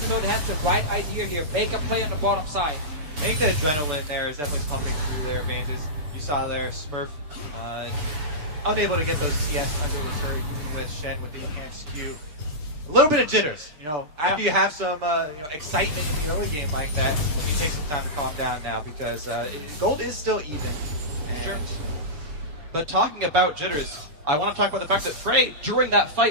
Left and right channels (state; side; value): late; left; 6.7 ms